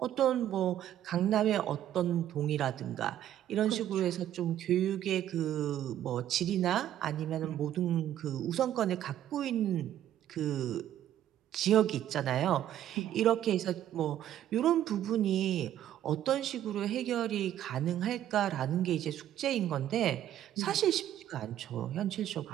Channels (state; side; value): quieter; left; 11.7 dB